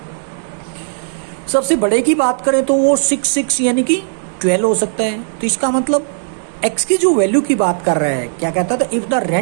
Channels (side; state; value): left; silent; digital silence